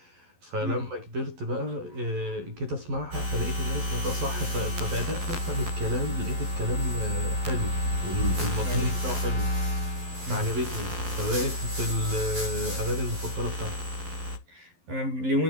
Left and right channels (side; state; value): left; late; 11 ms